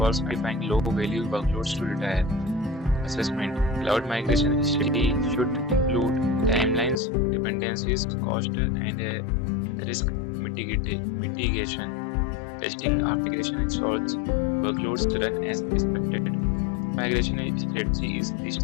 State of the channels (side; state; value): right; drops out; at 7.0 s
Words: identifying low-value workloads to retire? Assessment. Cloud migration strategy should include timelines, dependencies, cost, and risk mitigation. Testing after migration ensures workloads run as expected. Migration strategy is least